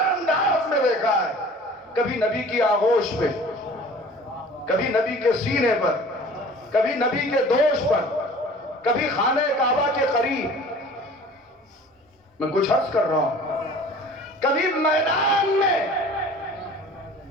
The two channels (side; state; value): both; normal; correlation 0.45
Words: انداز میں دیکھا ہے. کبھی نبی کی آغوش پہ، کبھی نبی کے سینے پر، کبھی نبی کے دوش پر، کبھی خانہ کعبہ کے قریب. میں کچھ عرض کر رہا ہوں، کبھی میدان میں.